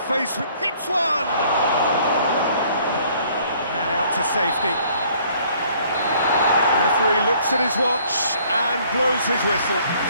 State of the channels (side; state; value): both; inverted; correlation -0.60